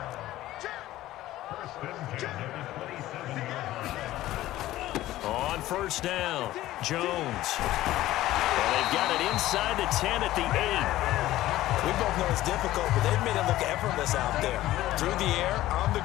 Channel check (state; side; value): quieter; right; 15.3 dB